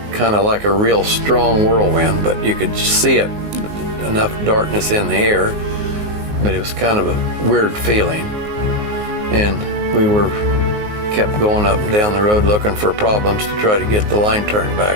kind of like a real strong whirlwind, but you could see it, enough darkness in the air, but it was kind of a weird feeling. And we kept going up and down the road looking for problems to try to get the line turned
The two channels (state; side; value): late; left; 19 ms